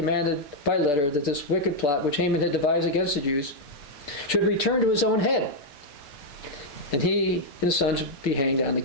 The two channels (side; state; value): right; late; 6.8 ms